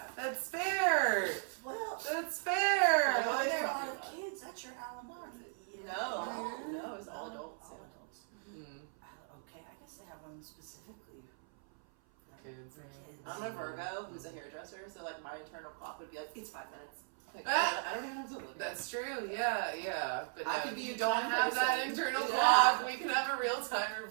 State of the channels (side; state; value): left; silent; 53 dB below the other